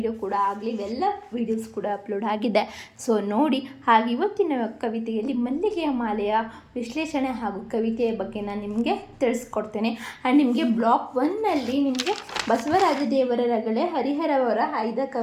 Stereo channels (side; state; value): both; identical; correlation 1.00